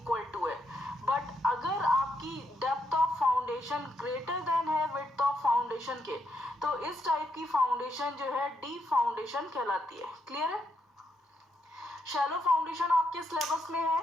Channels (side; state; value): both; normal; correlation 0.79